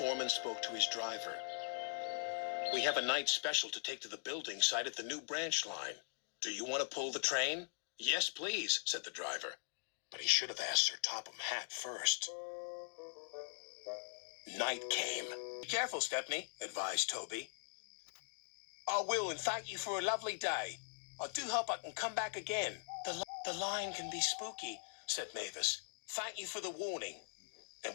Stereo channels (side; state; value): right; silent; digital silence